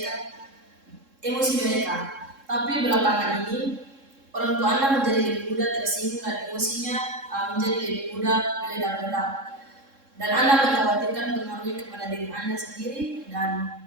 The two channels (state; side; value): late; left; 3.7 ms